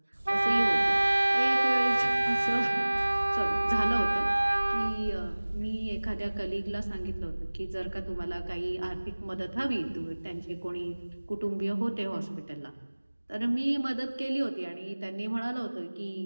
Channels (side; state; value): both; inverted; correlation -1.00